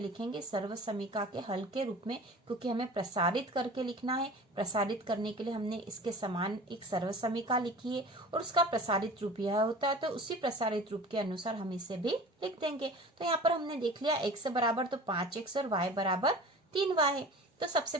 सर्व समीका के हल के रूप में, क्योंकि हमें प्रसारित करके लिखना है। प्रसारित करने के लिए हमने इसके समान एक सर्व समीका लिखी है और उसका प्रसारित रूप यह होता है। तो उसी प्रसारित रूप के अनुसार हम इसे भी लिख देंगे। तो यहाँ पर हमने देख लिया x बराबर तो 5x और y बराबर 3y है। तो सबसे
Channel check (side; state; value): both; normal; correlation 0.40